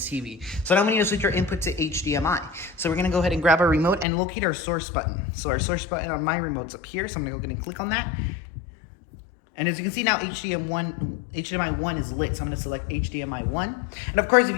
TV. So now we need to switch our input to HDMI. So we're gonna go ahead and grab our remote and locate our source button. So our source button on my remote's up here. So I'm gonna go ahead and click on that. And as you can see now, HDMI 1 is lit, so I'm going to select HDMI 1. And of course, if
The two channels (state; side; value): drops out; right; at 4.0 s